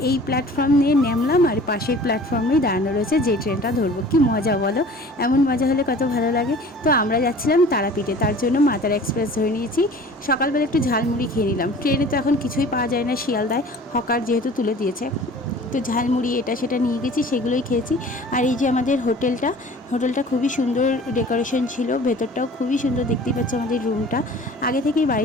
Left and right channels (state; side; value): normal; both; correlation 0.46